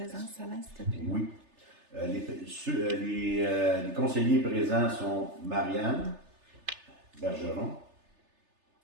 Alain, s'il te plaît? Oui. Les conseillers présents sont Marianne Bergeron,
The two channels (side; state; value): left; late; 3.3 ms